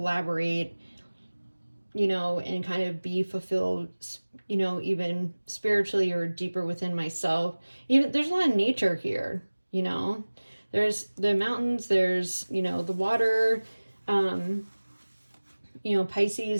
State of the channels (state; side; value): inverted; both; correlation -1.00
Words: and kind of be fulfilled, even spiritually or deeper within myself. Even there's a lot of nature here, there's the mountains, there's, the water.